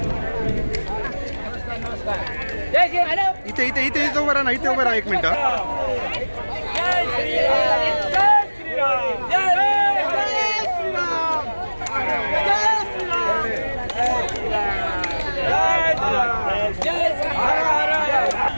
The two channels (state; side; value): inverted; both; correlation -1.00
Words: इथे इथे इथे इथे उभं राहा ना, इथे उभं राहा 1 मिनिट.